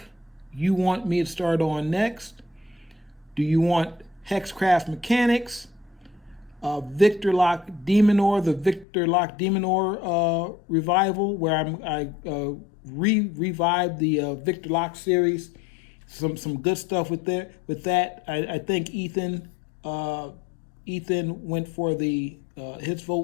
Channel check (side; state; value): right; drops out; at 8.8 s